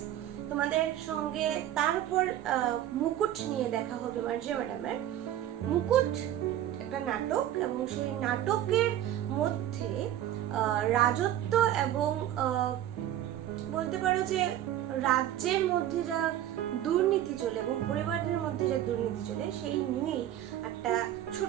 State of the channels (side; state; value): left; quieter; 12.0 dB